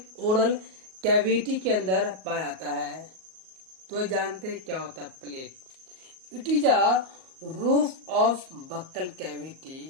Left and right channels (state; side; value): late; left; 38 ms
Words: ओरल कैविटी के अंदर पाया जाता है। तो जानते हैं क्या होता है palate. It is a roof of buccal cavity